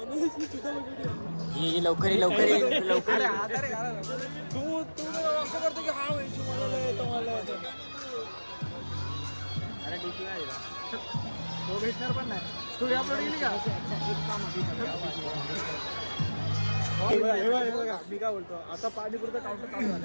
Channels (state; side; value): inverted; both; correlation -1.00